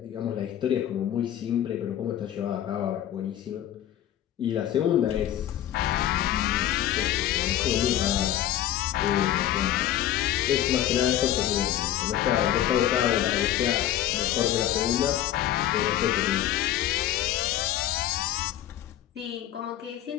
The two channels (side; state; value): right; quieter; 12.1 dB